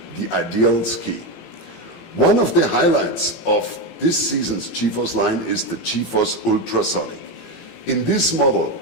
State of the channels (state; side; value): late; right; 18 ms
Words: the ideal ski. One of the highlights of this season's GeForce line is the GeForce Ultrasonic. In this model